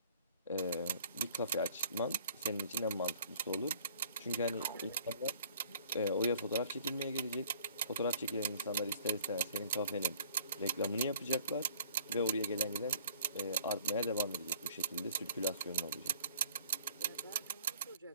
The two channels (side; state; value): both; inverted; correlation -0.55